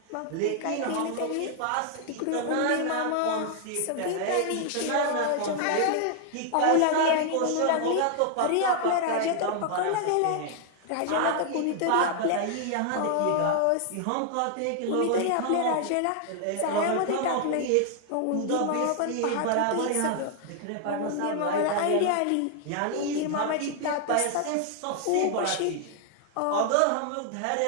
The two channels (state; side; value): different; both; correlation 0.00